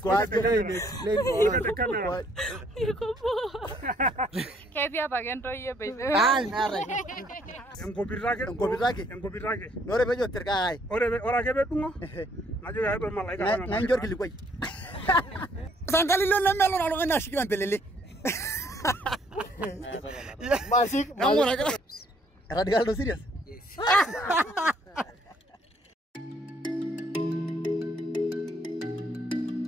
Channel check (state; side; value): normal; both; correlation 0.66